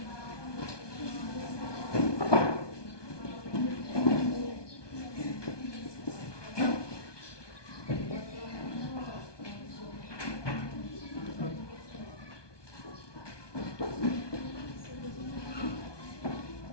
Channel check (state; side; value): late; right; 1.2 ms